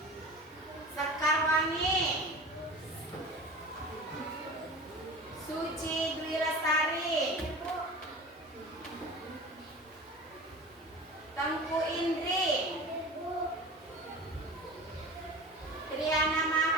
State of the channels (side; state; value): both; normal; correlation 0.35